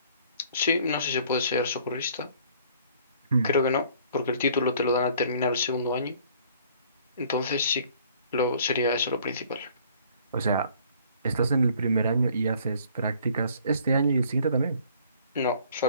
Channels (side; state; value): both; inverted; correlation -0.56